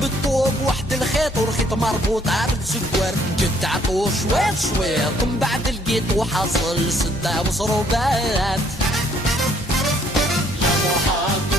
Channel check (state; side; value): normal; both; correlation 0.65